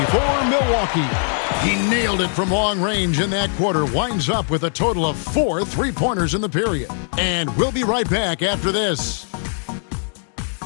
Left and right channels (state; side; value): silent; right; digital silence